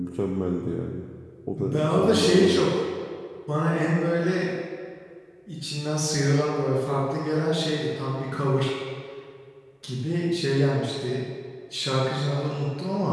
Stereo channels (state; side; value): identical; both; correlation 1.00